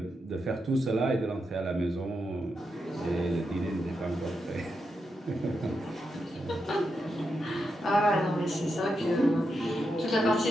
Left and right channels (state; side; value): normal; both; correlation 0.85